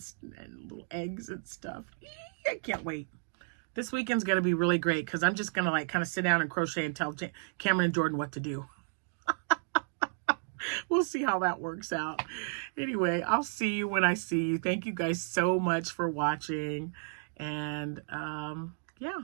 little eggs and stuff. I can't wait. This weekend's going to be really great because I'm just going to like kind of sit down and crochet and tell Cameron and Jordan what to do. We'll see how that works out. Anyway, I'll see you when I see you. Thank you guys so much for watching. And yeah,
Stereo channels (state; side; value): silent; left; digital silence